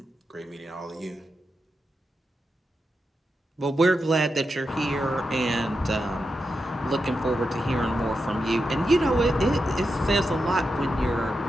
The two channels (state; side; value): normal; both; correlation 0.88